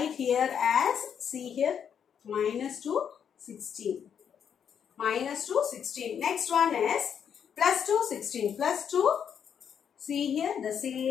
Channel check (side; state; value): right; quieter; 8.0 dB